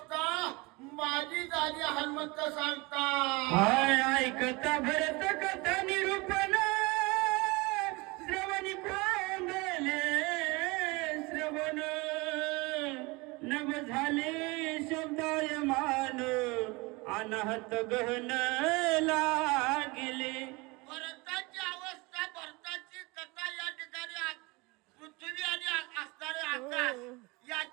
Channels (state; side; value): quieter; left; 25.2 dB